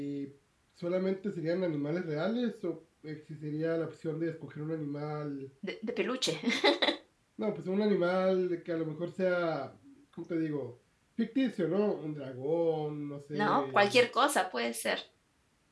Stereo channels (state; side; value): identical; both; correlation 1.00